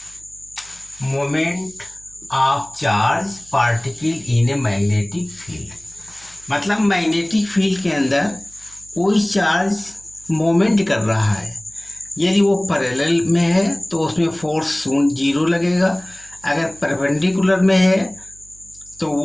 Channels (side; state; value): right; noise; hum, 26 dB below the sound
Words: moment of charge particle in a magnetic field मतलब magnetic field के अंदर कोई चार्ज मोमेंट कर रहा है। यदि वो पैरेलल में है तो उसमें फोर्स 0 लगेगा, अगर परपेंडिकुलर में है तो